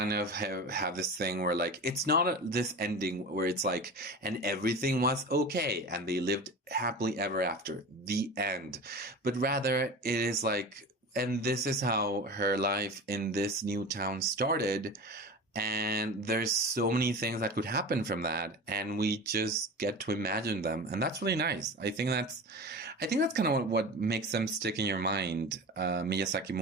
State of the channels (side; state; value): both; normal; correlation 0.32